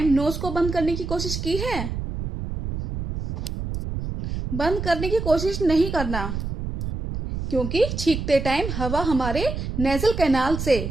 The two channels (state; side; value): noise; right; rumble, 5 dB below the sound